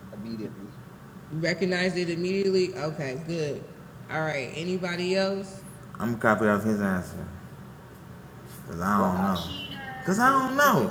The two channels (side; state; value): both; identical; correlation 1.00